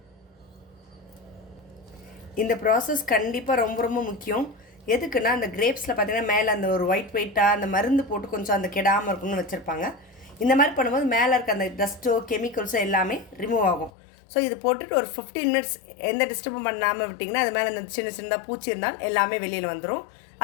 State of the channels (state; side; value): drops out; right; at 13.9 s